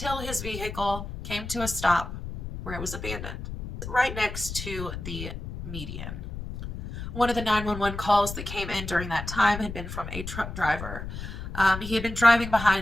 his vehicle came to a stop where it was abandoned, right next to the median. One of the 911 calls that came in during that time had been from a truck driver. He had been driving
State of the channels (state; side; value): noise; left; rumble, 8 dB below the sound